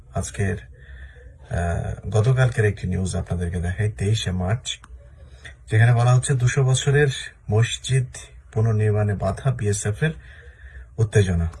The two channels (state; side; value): identical; both; correlation 1.00